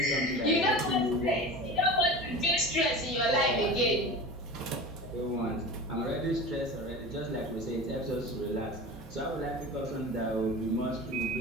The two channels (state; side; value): normal; both; correlation 0.33